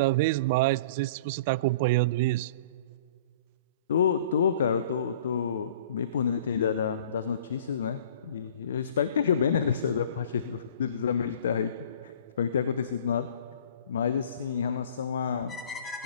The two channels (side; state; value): both; inverted; correlation -0.46